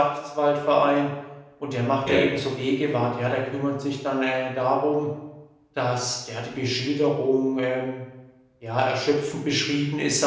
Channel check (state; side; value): identical; both; correlation 1.00